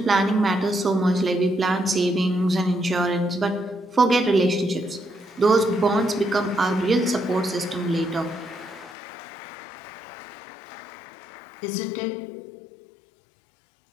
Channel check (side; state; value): right; drops out; at 9.0 s